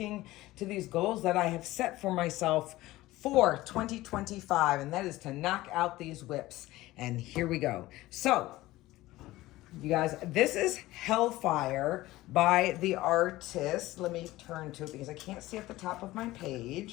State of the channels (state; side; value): quieter; right; 17.6 dB